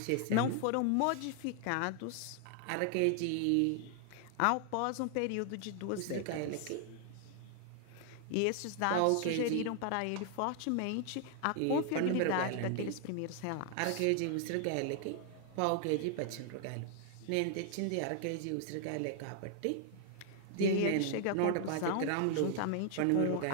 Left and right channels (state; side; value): different; both; correlation 0.00